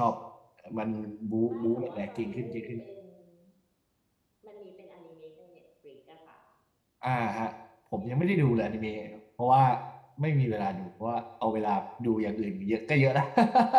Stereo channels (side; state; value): both; identical; correlation 1.00